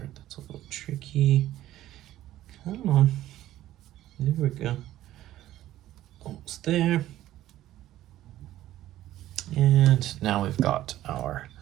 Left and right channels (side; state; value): left; quieter; 14.0 dB